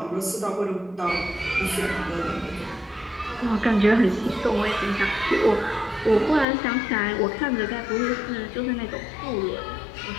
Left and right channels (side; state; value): right; drops out; at 6.5 s